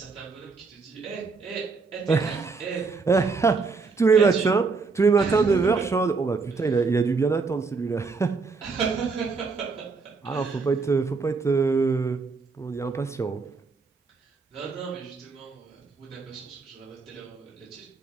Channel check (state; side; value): quieter; left; 4.5 dB